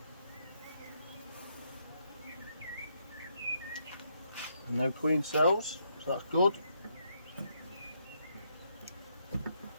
No queen cells, so that's good.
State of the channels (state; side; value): inverted; both; correlation -0.76